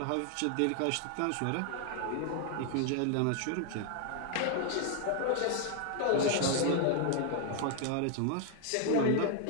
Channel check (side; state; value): both; different; correlation 0.00